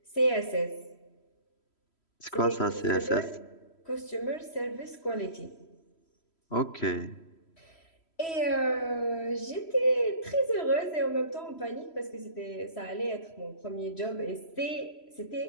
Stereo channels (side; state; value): right; late; 3.1 ms